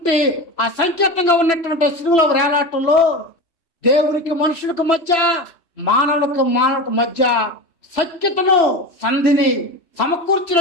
ఆ సంకేతంగా ఉన్నటువంటి సిలువలో వేలాటంలో దేవునికి మనుషులకు మధ్య మానవులకు మధ్య సఖ్యతను సంధిని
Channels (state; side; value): late; right; 3.0 ms